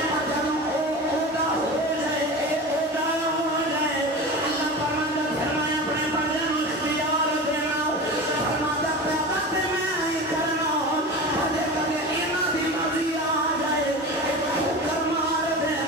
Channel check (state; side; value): normal; both; correlation 0.30